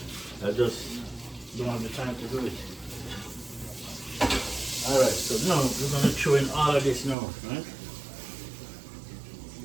I just don't have the time to do it. Alright, so now we're going to throw in all of this now, right?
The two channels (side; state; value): left; drops out; at 7.2 s